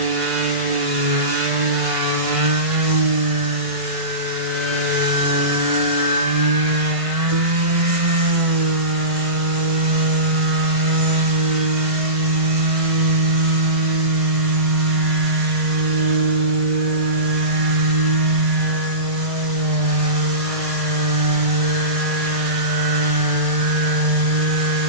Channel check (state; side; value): late; left; 1.5 ms